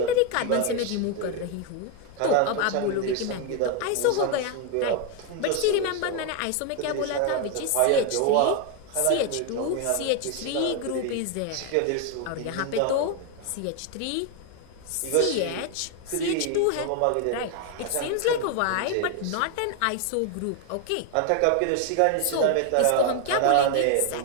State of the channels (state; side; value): different; both; correlation 0.01